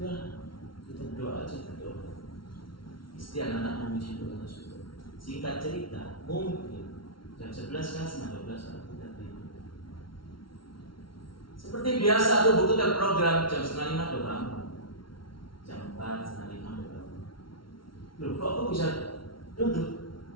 kita berdoa aja, berdoa. Istri anak-anak memuji Tuhan. Singkat cerita, mungkin jam 11 kan, setengah 12 kan kita tidur. Seperti biasa tuh buku terprogram jam setengah 5 udah bangun. Jam 4, setengah 5 udah bangun. Loh, kok aku bisa duduk?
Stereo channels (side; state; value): right; late; 0.74 ms